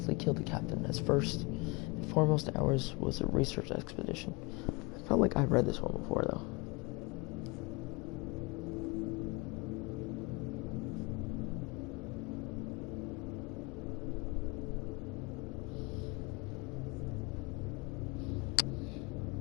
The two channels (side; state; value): right; quieter; 26.9 dB